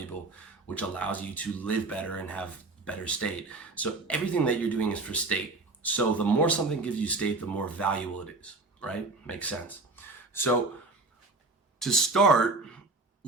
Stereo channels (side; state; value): left; quieter; 3.4 dB